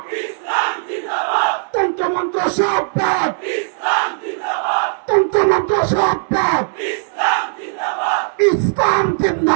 তন্ত্রমন্ত্র সব বাদ, তন্ত্রমন্ত্র সব বাদ, ইসলাম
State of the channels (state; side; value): silent; left; 67 dB below the other